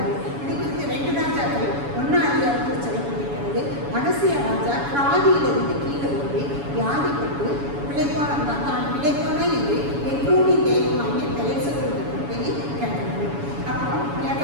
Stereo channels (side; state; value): left; late; 7.1 ms